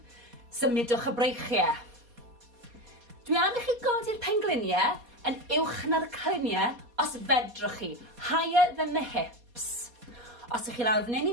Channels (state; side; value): late; left; 4.2 ms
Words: symudwch y breichiau. Dwi am i chi godi'r pengliniau yn uwch na'r cliniau os fedrwch chi, higher than the hips. Os ych chi lawr fan hyn